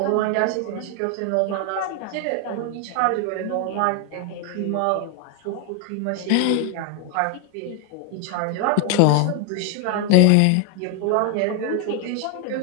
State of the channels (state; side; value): different; both; correlation 0.00